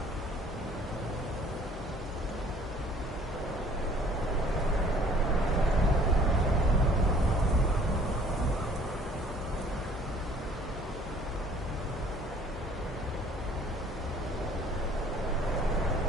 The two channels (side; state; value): both; normal; correlation 0.55